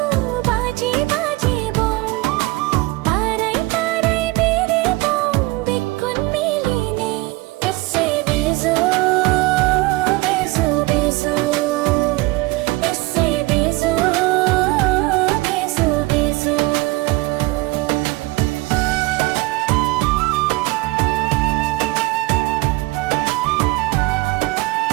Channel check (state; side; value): quieter; left; 21.5 dB